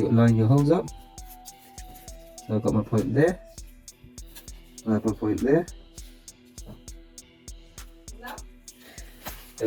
line your holes up. So I've got my point there, I have my point there,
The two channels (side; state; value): both; identical; correlation 1.00